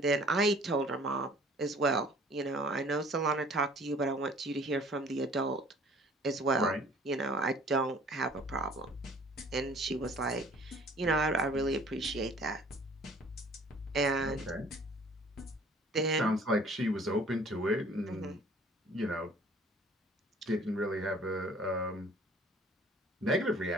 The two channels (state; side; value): normal; both; correlation 0.52